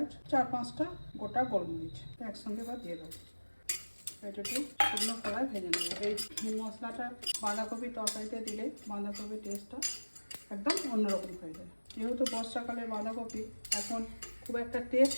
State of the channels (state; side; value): inverted; both; correlation -1.00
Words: 4-5টা গোটা গোলমরিচ একসঙ্গে বা দিয়ে দেবো। এটা একটু শুকনো কড়ায় ভেজে নেবো। এই মশলাটা বাঁধাকপি তরকারিতে দিলে বাঁধাকপির টেস্টটা একদম অন্যরকম হয়ে যায়। যেহেতু বর্ষাকালের বাঁধাকপি এখন খুব একটা টেস্ট